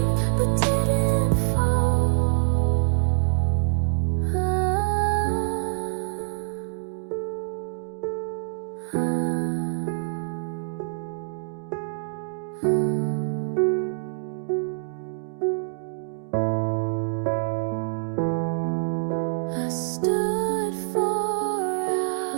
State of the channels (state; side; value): silent; left; digital silence